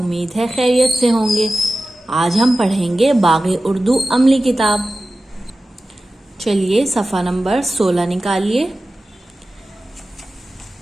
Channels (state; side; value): normal; both; correlation 0.95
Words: है खैरियत से होंगे। आज हम पढ़ेंगे बाग़े उर्दू अमली किताब। चलिए सफ़ा नंबर 16 निकालिए।